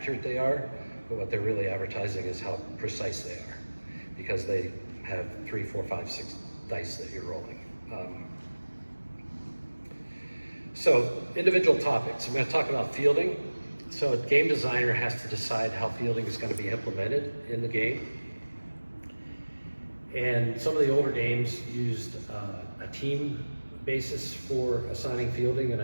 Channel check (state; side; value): inverted; both; correlation -1.00